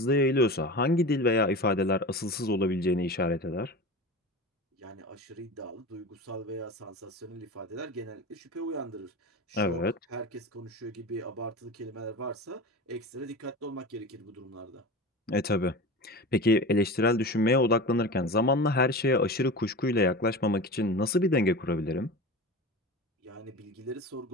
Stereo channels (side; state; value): both; normal; correlation 0.30